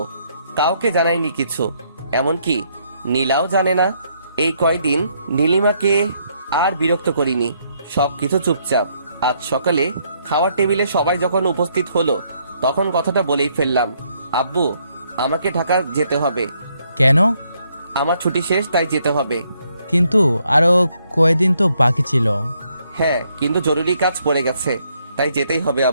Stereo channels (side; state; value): both; inverted; correlation -0.72